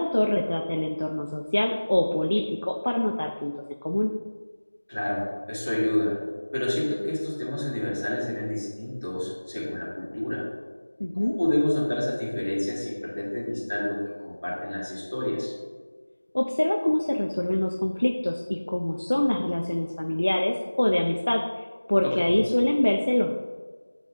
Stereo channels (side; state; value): both; inverted; correlation -1.00